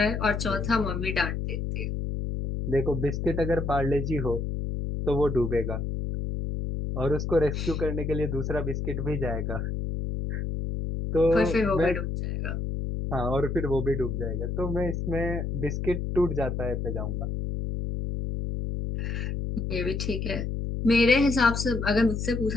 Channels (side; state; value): left; noise; hum, 2 dB below the sound